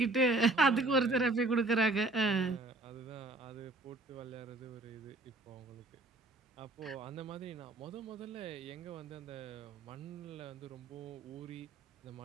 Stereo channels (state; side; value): quieter; left; 3.0 dB